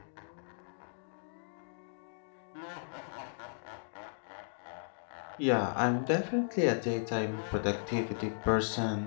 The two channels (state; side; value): silent; right; digital silence